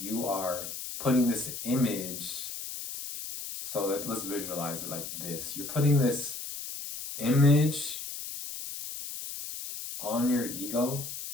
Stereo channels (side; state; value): left; noise; hiss, 8 dB below the sound